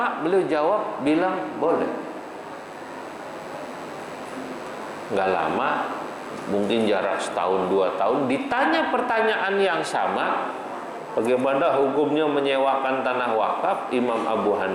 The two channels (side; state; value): both; identical; correlation 1.00